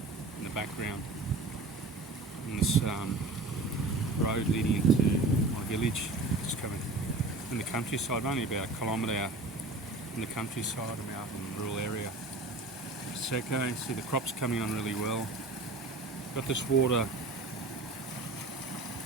in the background. And this road leading into my village, just coming in the countryside, only about a kilometre out in the countryside. I'm out in a rural area. It's okay, see the crops coming on really well. Got this water,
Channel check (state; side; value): quieter; left; 3.1 dB